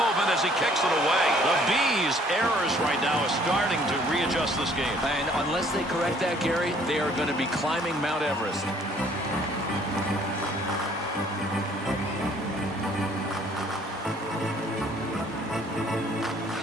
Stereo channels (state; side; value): normal; both; correlation 0.59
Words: as he kicks it away. The Bees' errors right now are starting to readjust this game. And unless they correct that, Gary, they are going to be climbing Mount Everest.